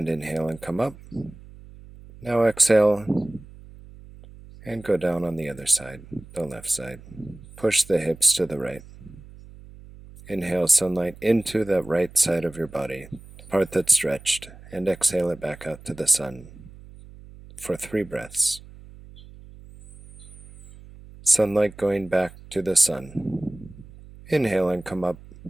inhale and come up. Now exhale and go down on the other side, the left side. Push the hips to the right. Inhale sunlight into the right side of your body, part that's stretched, and exhale it back out to the sun for 3 breaths. Sunlight going back to the sun. Inhale and come up.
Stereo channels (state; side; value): noise; right; hum, 19 dB below the sound